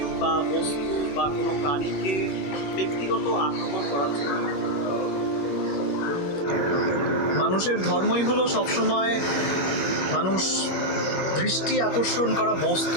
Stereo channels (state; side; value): late; right; 21 ms